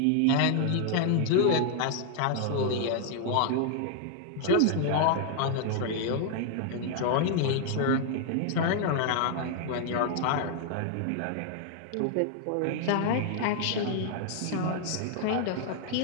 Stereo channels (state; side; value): different; both; correlation 0.00